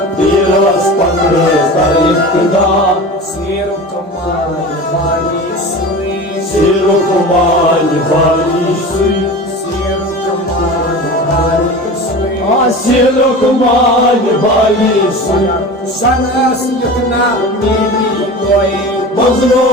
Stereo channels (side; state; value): both; normal; correlation 0.33